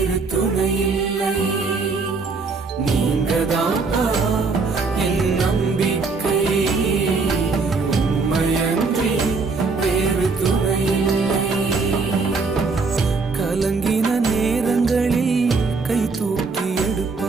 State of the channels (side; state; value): left; quieter; 4.3 dB